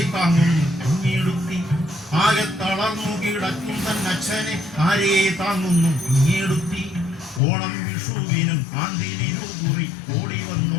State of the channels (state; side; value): drops out; right; at 7.4 s